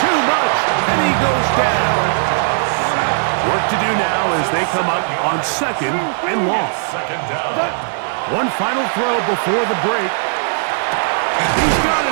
too much, and he goes down. Work to do now as they come up on 2nd and long. 2nd down. One final throw before the break. He's got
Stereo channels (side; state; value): left; silent; 58 dB below the other